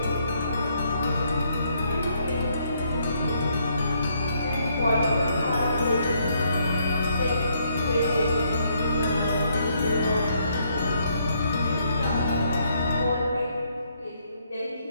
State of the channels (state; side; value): inverted; both; correlation -0.72